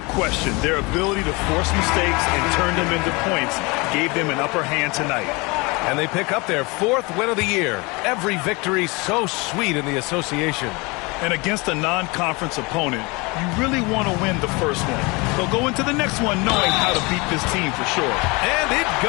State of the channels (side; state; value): right; quieter; 26.5 dB